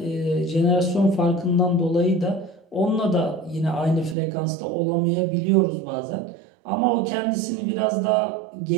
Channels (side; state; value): left; drops out; at 4.2 s